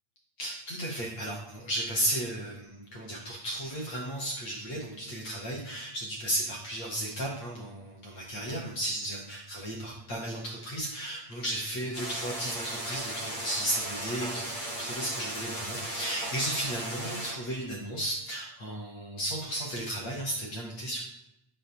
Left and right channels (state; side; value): late; right; 8.6 ms